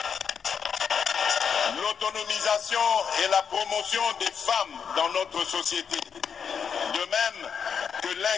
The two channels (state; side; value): quieter; right; 6.8 dB